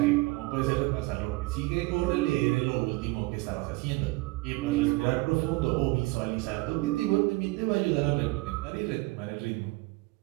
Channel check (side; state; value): left; quieter; 22.8 dB